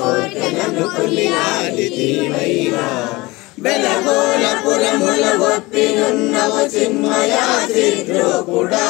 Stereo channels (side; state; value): right; quieter; 22.1 dB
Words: కొలియాడితివైనా బెలగోళపురముల ఒప్పినున్నవు చిన్మయా